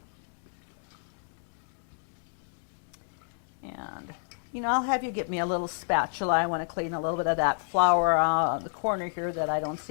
And, you know, I'll have you get me a little spatula. I want to clean a little bit of that flour on the corner here that I don't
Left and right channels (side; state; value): right; silent; 58 dB below the other